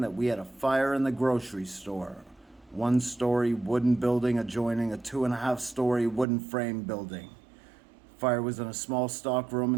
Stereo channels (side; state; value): left; drops out; at 6.2 s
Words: that we had a fire in the grocery store. 1-story wooden building adjoining a 2.5-story wooden frame building. Fire was in a small stock room